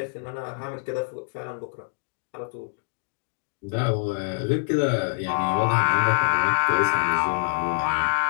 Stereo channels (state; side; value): silent; right; 61 dB below the other